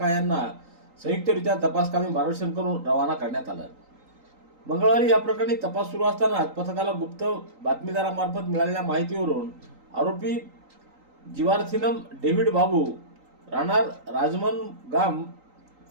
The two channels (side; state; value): left; late; 3.8 ms